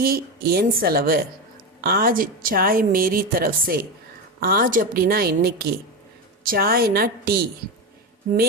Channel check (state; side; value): normal; both; correlation 0.17